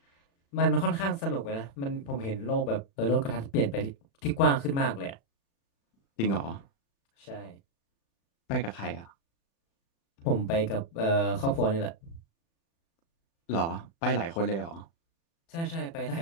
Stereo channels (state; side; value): late; right; 36 ms